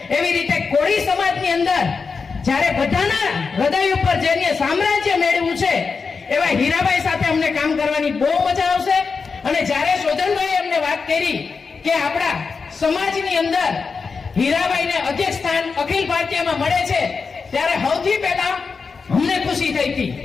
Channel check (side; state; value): right; quieter; 5.0 dB